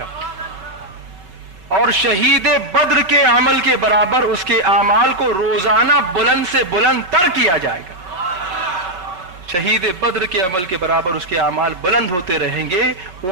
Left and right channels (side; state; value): left; late; 5.3 ms